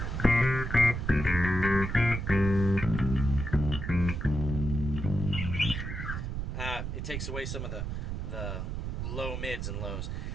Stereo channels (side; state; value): right; noise; rumble, 4 dB below the sound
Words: It takes away some of the low mids and lows.